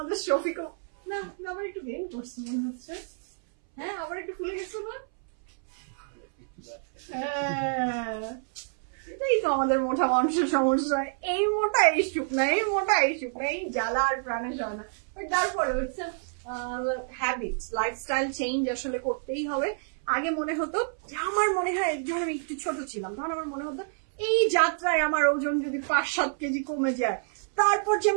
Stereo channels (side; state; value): left; silent; 59 dB below the other